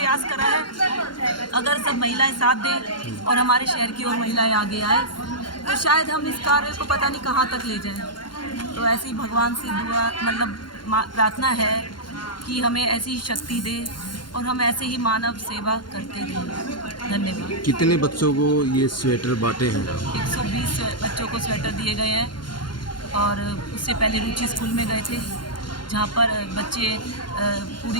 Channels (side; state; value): right; late; 0.71 ms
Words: करा है। अगर सब महिलाएं साथ दें और हमारे शहर की और महिलाएं आगे आए तो शायद हम इस कार्य को पता नहीं कहाँ तक ले जाएं। तो ऐसी भगवान से दुआ मतलब प्रार्थना है कि हमें ऐसी शक्ति दे और हम ऐसे ही मानव सेवा करते रहें। धन्यवाद। कितने बच्चों को ये स्वेटर बांटे हैं? 120 बच्चों को स्वेटर दिए गए हैं। और उससे पहले रुचि स्कूल में गए थे, जहाँ पर बच्चे